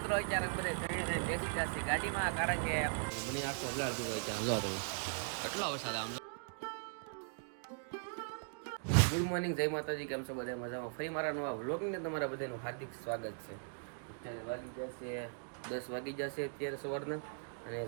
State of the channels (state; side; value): silent; left; digital silence